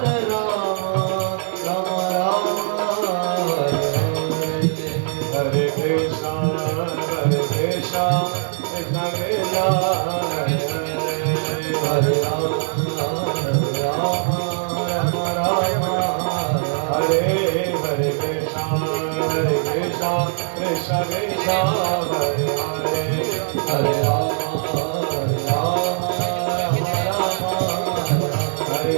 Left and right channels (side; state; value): left; silent; 56 dB below the other